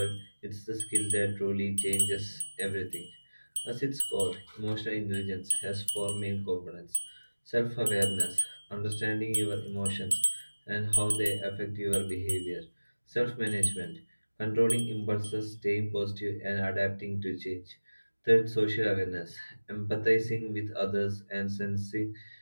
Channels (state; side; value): inverted; both; correlation -1.00